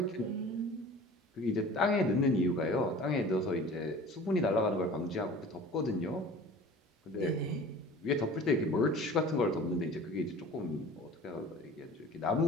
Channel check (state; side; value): normal; both; correlation 0.42